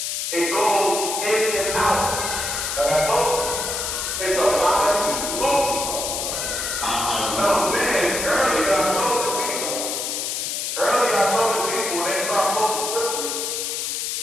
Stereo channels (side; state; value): left; noise; hiss, 2 dB below the sound